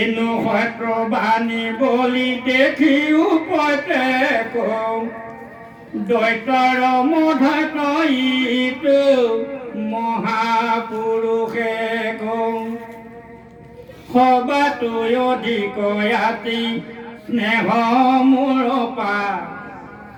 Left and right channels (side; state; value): both; identical; correlation 1.00